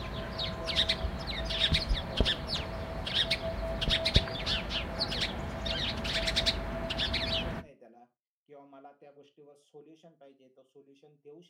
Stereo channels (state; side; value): identical; both; correlation 1.00